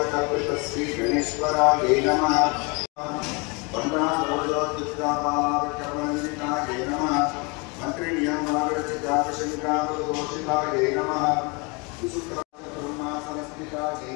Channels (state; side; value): quieter; right; 29.9 dB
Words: गणेश्वरायै नमः वन्दासरोजोत्थितापालाकर्मण्डितायै नमः मन्त्रिण्यमागरचिताकशङ्कामदोषितायै नमः विशुक्राब्रह्मासनस्थितायै